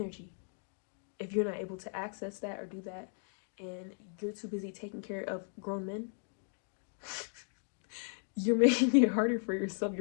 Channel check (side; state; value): right; silent; 54 dB below the other